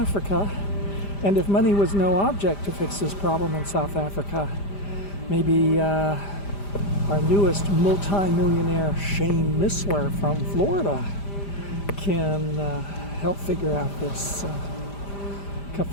and if money was no object to fix this problem in South Africa, maybe our newest multi-millionaire Shane Missler from Florida can help figure out this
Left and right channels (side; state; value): right; late; 5.0 ms